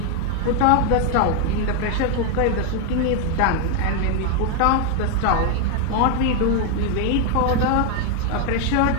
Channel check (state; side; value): different; both; correlation 0.01